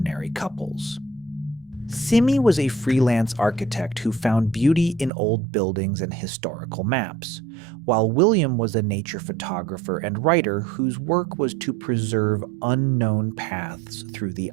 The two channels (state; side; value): drops out; left; at 5.1 s